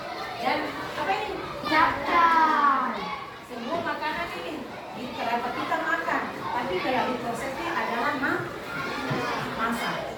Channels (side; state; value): both; identical; correlation 1.00